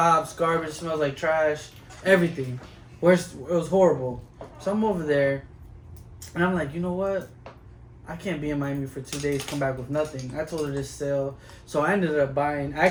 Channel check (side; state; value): both; identical; correlation 1.00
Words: garbage, smells like trash, everything. Worst, it was horrible. So I'm over there, and I'm like, you know what? I can't be in Miami for 2 days, come back with nothing. I told her this sale. So I ended up buying,